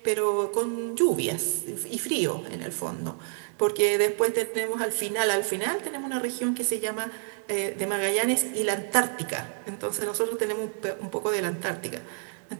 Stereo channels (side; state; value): left; silent; 59 dB below the other